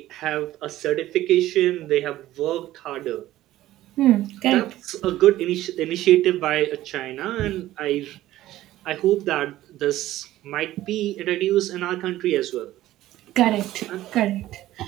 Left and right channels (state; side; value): quieter; left; 14.8 dB